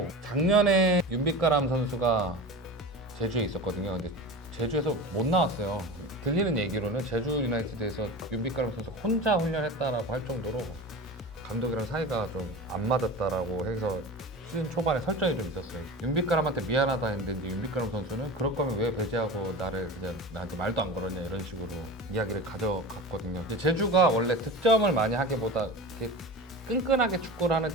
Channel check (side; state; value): both; normal; correlation 0.31